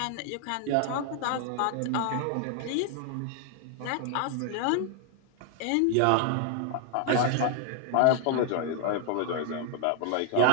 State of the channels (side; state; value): both; different; correlation 0.00